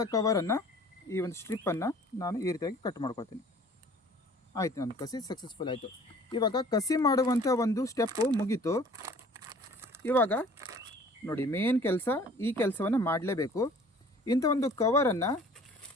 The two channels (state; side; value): normal; both; correlation 0.50